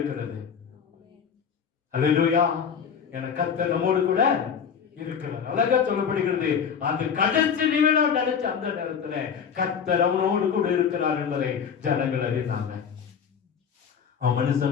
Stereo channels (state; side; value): quieter; right; 7.1 dB